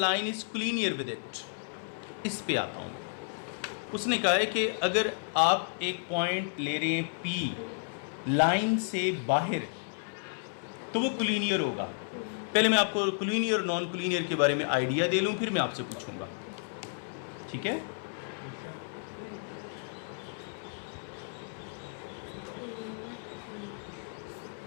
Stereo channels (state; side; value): silent; right; 56 dB below the other